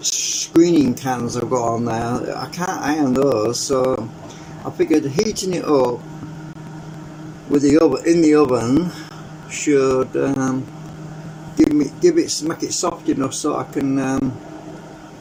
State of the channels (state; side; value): identical; both; correlation 1.00